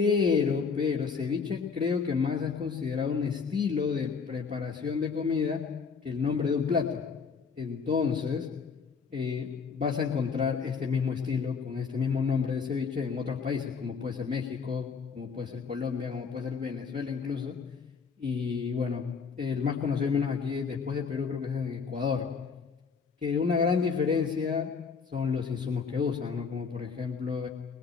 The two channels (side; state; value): right; quieter; 5.6 dB